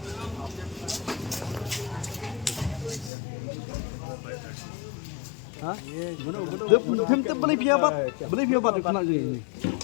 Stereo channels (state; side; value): drops out; right; at 3.1 s